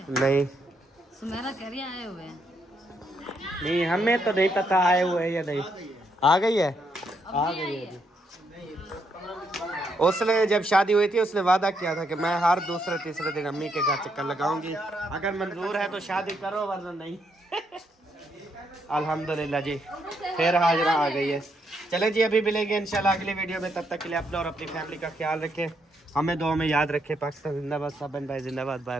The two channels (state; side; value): normal; both; correlation 0.76